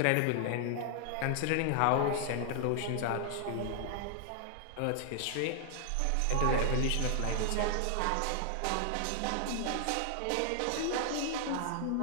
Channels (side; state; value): both; different; correlation 0.00